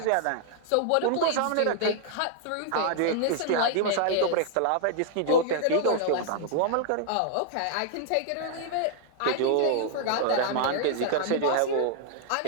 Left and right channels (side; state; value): both; different; correlation -0.01